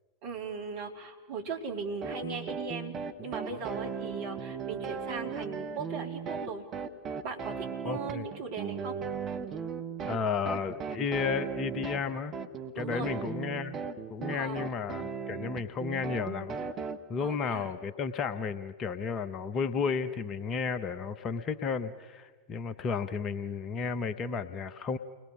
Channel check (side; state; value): both; normal; correlation 0.35